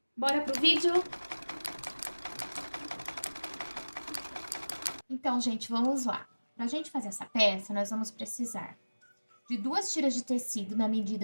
Bora pro vídeo? Então, gente, vamos lá. Para a gente fazer essa peça, nós vamos precisar de 2 tiras de tecido na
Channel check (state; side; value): inverted; both; correlation -1.00